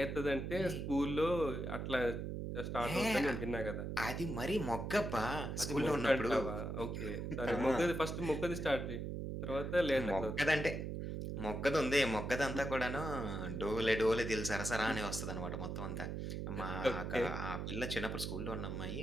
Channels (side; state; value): right; noise; hum, 4 dB below the sound